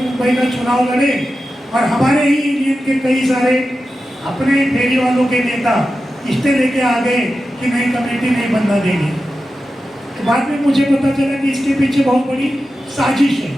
का चुनाव लड़े और हमारे ही यूनियन के कई सारे अपने फेरी वालों के नेता इस्ते लेके आ गए कि नई कमेटी नहीं बनना देंगे। तो बाद में मुझे पता चला कि इसके पीछे बहुत बड़ी साजिश है,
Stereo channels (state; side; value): normal; both; correlation 0.92